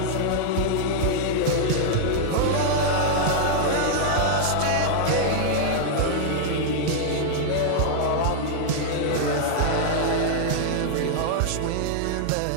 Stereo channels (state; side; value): different; both; correlation -0.01